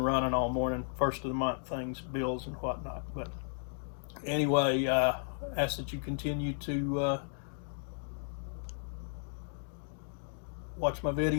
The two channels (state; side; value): silent; right; digital silence